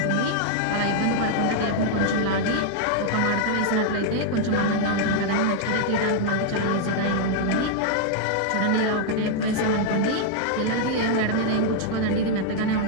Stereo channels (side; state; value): both; different; correlation 0.00